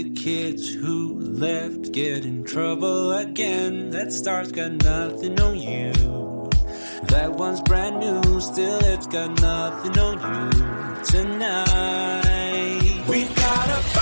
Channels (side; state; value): both; inverted; correlation -1.00